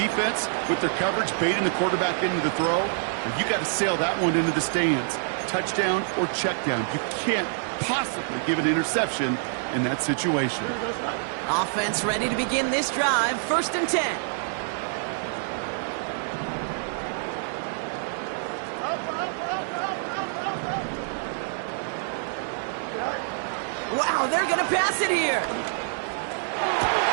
with their coverage, baiting the quarterback into the throw. And you got to sail that one into the stands. Touchdown or check down. You can't possibly give an interception in that situation. Offense ready to begin this drive. 1st and 10. Wow, they're going to pass it here.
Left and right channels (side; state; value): left; silent; 61 dB below the other